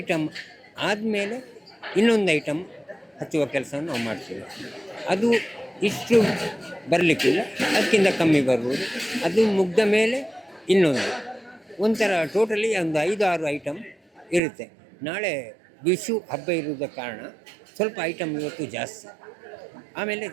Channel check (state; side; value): drops out; left; at 14.4 s